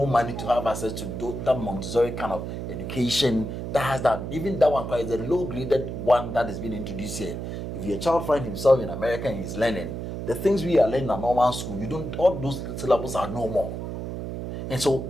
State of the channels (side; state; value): right; noise; hum, 6 dB below the sound